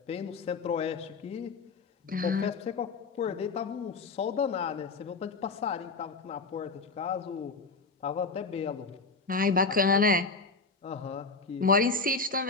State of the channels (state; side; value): quieter; right; 4.1 dB